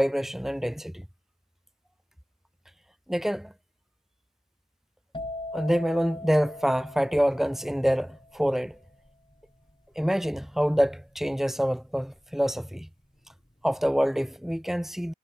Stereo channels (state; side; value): normal; both; correlation 0.98